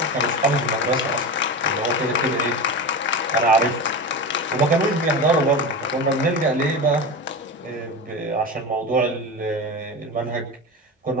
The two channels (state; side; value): normal; both; correlation 0.24